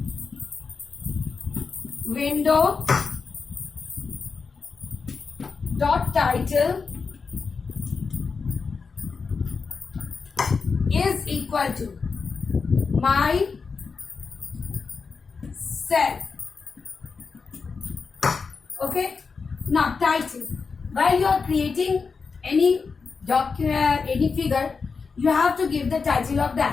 window dot title is equal to my self. Okay. Now title. While you are creating any document, any figure, you have to give the title of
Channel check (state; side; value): quieter; right; 5.0 dB